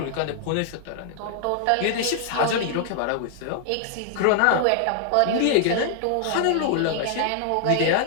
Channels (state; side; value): different; both; correlation 0.00